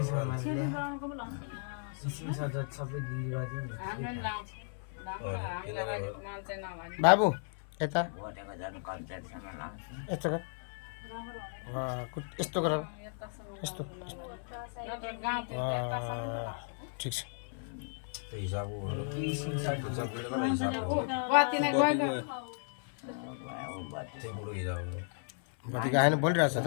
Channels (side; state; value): right; silent; 55 dB below the other